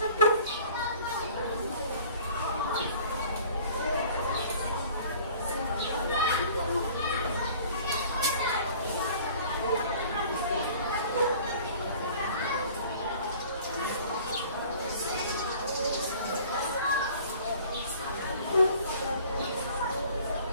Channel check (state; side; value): inverted; both; correlation -0.48